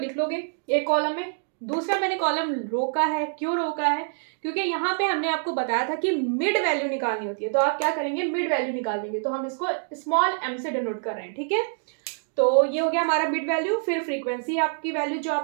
लोगे एक कॉलम में। दूसरा मैंने कॉलम रोका है, क्यों रोका है, क्योंकि यहाँ पे हमने आपको बताया था कि मिड वैल्यू निकालनी होती है। तो आप क्या करेंगे, मिड वैल्यू निकाल देंगे। तो हम इसको स्मॉल m से डिनोट कर रहे हैं, ठीक है। तो ये हो गया हमारा मिड वैल्यू। फिर फ्रीक्वेंसी आपकी वैल्यू जो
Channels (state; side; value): silent; left; digital silence